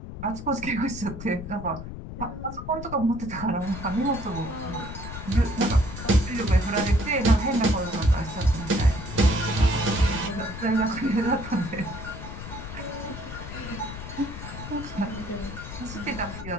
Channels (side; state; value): left; noise; rumble, 10 dB below the sound